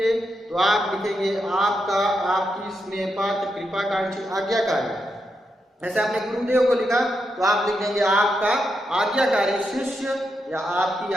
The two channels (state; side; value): normal; both; correlation 0.84